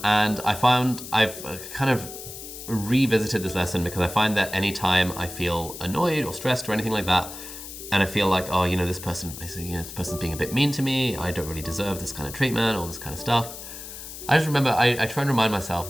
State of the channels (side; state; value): left; noise; hiss, 12 dB below the sound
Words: I found I've kind of revisited this lesson because I find that anytime I feel annoyed or stressed or anything like that, and I feel like, oh, this person's being a bit mean to me, I don't really deserve this kind of treatment, all this kind of stuff. I just remember, I try and remind myself